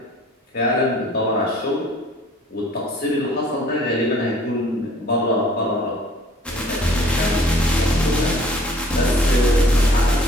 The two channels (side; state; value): both; normal; correlation 0.54